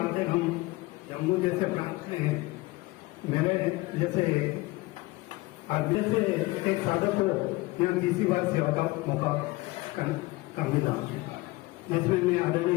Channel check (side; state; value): right; quieter; 21.4 dB